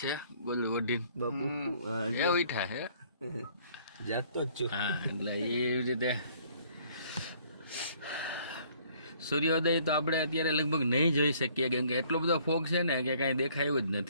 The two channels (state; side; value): inverted; both; correlation -0.60